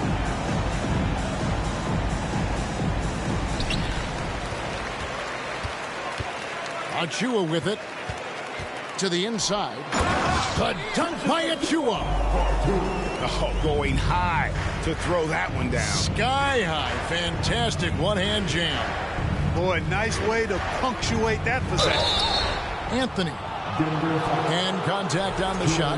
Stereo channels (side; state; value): both; identical; correlation 1.00